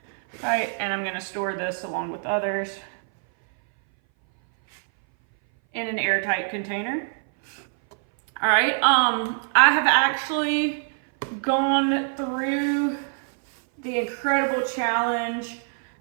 right? And I'm gonna store this along with others in an airtight container. All right, I have actually gone through the incredible challenge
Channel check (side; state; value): left; silent; 59 dB below the other